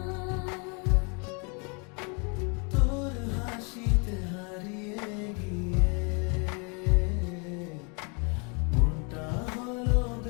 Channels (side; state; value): right; quieter; 34.3 dB